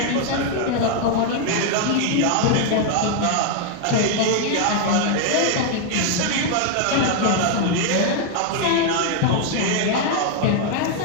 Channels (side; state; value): both; different; correlation 0.00